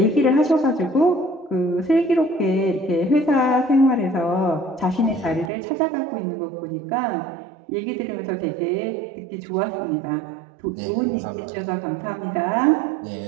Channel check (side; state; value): left; drops out; at 5.5 s